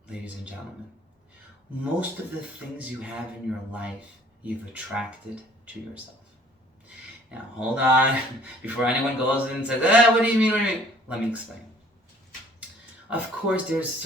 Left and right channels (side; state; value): both; normal; correlation 0.56